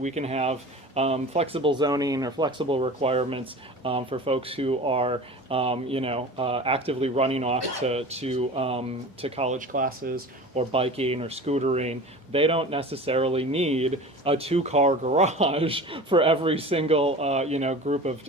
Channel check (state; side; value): normal; both; correlation 0.36